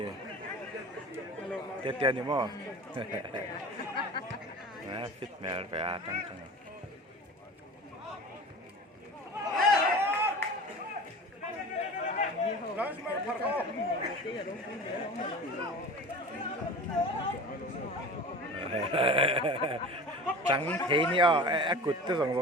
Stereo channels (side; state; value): both; normal; correlation 0.36